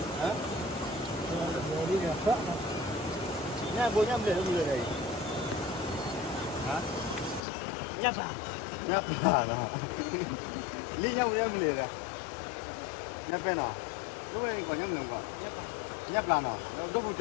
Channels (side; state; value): right; drops out; at 7.4 s